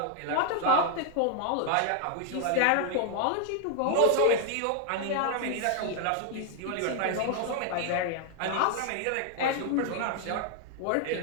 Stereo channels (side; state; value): both; different; correlation 0.00